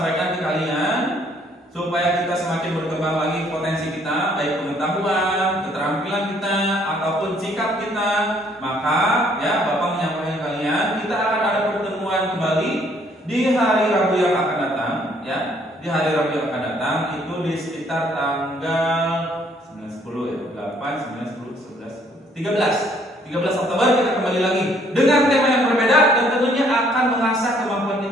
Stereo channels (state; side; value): normal; both; correlation 0.64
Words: ke kalian supaya kita semakin berkembang lagi potensi kita, baik pengetahuan, keterampilan kita ataupun sikap kita, maka ya Bapak menyampaikan kalian kita akan ada pertemuan kembali di hari Rabu yang akan datang ya. Di hari Rabu yang akan datang itu di sekitar tanggal 9, 10 ya, 8, 9, 10, 11, 13 Oktober kita kembali lagi dengan tema yang berbeda dan tentunya akan mengasah kemampuan